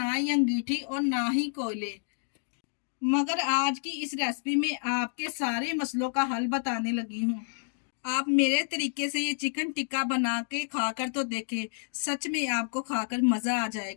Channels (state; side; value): silent; right; digital silence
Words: ही अंगीठी और ना ही कोयले। मगर आज की इस रेसिपी में आपके सारे मसलों का हल बताने लगी हूँ। आप मेरे तरीके से ये चिकन टिक्का बना के खाकर तो देखें, सच में आपको खाकर मजा आ